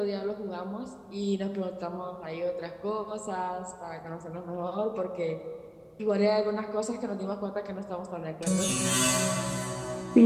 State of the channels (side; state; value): both; identical; correlation 1.00